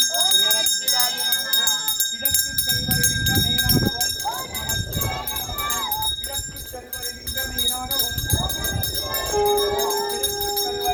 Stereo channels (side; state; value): both; identical; correlation 1.00